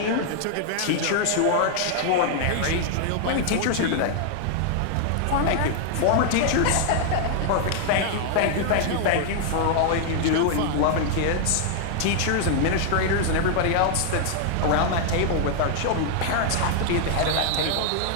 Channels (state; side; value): different; both; correlation 0.00